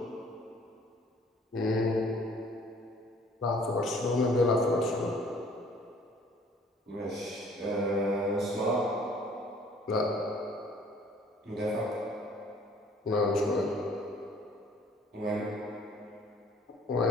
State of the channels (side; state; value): both; normal; correlation 0.56